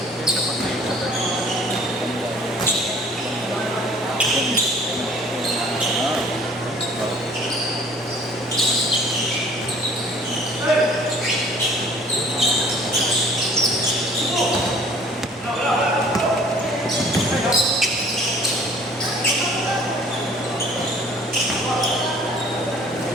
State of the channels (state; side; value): normal; both; correlation 0.53